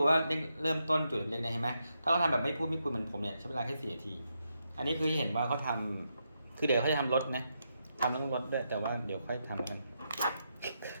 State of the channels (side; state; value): both; inverted; correlation -0.82